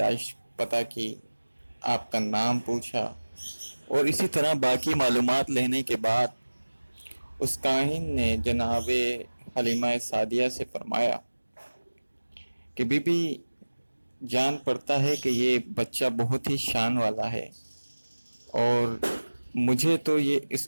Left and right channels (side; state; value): both; inverted; correlation -1.00